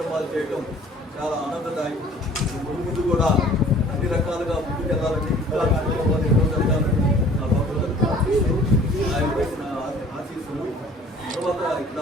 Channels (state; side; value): normal; both; correlation 0.51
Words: చేయటం చాలా ఆనందదాయకం. ముందు కూడా అన్ని రకాలుగా ముందుకెళ్ళాలని ఆయన పెట్టిన ఆశీస్సులు. తర్వాత